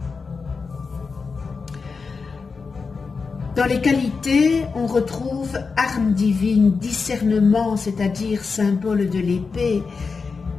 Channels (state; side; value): quieter; right; 4.8 dB